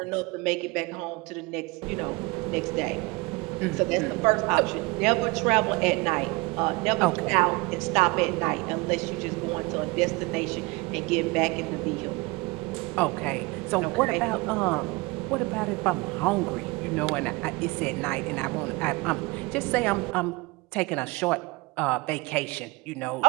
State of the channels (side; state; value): left; quieter; 24.9 dB